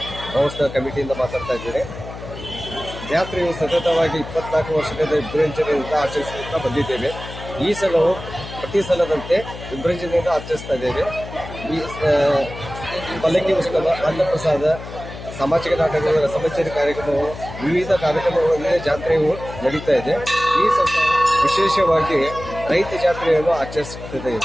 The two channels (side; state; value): left; noise; hum, 12 dB below the sound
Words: ಮಹೋತ್ಸವ ಕಮಿಟಿಯಿಂದ ಮಾತಾಡ್ತಾ ಇದ್ದೇನೆ. ಜಾತ್ರೆಯು ಸತತವಾಗಿ 24 ವರ್ಷದಿಂದ ವಿಜೃಂಭಣೆಯಿಂದ ಆಚರಿಸುತ್ತಾ ಬಂದಿದ್ದೇವೆ. ಈ ಸಲವು ಪ್ರತಿ ಸಲದಂತೆ ವಿಜೃಂಭಣೆಯಿಂದ ಆಚರಿಸ್ತಾ ಇದ್ದೇವೆ. ಈ ಪಲ್ಲಕ್ಕಿ ಉತ್ಸವ, ಅನ್ನಪ್ರಸಾದ, ಸಾಮಾಜಿಕ ನಾಟಕಗಳು, ರಸಮಂಜರಿ ಕಾರ್ಯಕ್ರಮವು, ವಿವಿಧ ಕಾರ್ಯಕ್ರಮಗಳಲ್ಲಿ ಜಾತ್ರೆಯು ನಡೀತಾ ಇದೆ. ಈ ಸಲ ವಿಶೇಷವಾಗಿ ರೈತ ಜಾತ್ರೆಯನ್ನು ಆಚರಿಸುತ್ತದೆ.